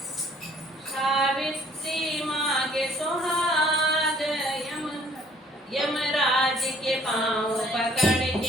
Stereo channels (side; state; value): both; normal; correlation 0.58